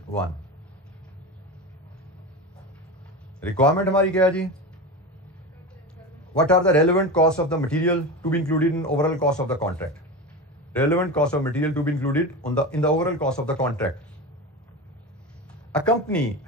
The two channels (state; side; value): normal; both; correlation 0.24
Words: 1 रिक्वायरमेंट हमारी क्या है जी? What are the relevant costs of the material to be included in overall cost of the contract? Relevant cost of material to be included in the overall cost of the contract. A company